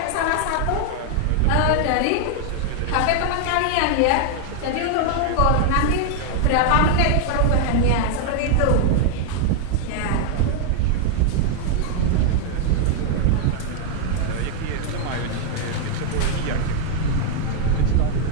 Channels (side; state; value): both; different; correlation 0.00